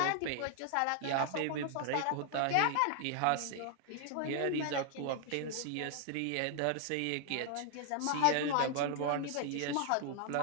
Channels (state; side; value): different; both; correlation 0.00